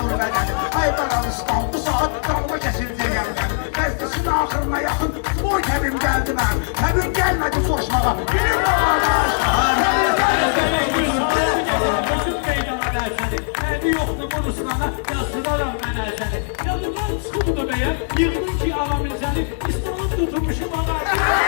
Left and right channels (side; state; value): right; silent; digital silence